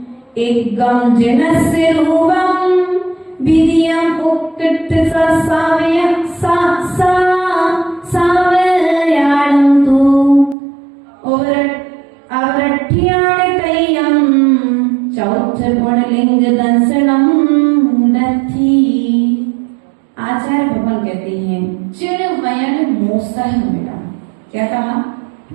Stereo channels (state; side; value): drops out; left; at 10.6 s